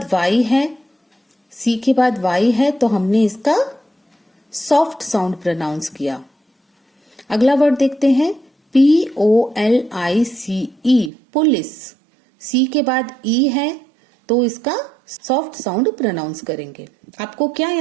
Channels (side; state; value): left; drops out; at 11.1 s